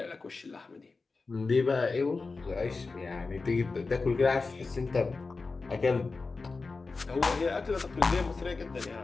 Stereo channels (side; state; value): right; quieter; 4.0 dB